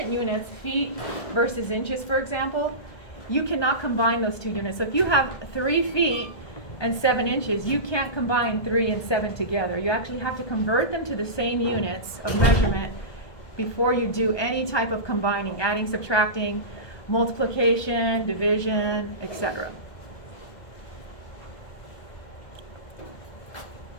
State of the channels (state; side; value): late; right; 1.2 ms